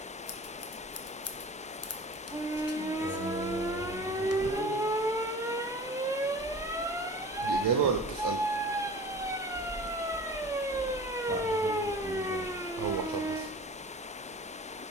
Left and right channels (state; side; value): normal; both; correlation 0.40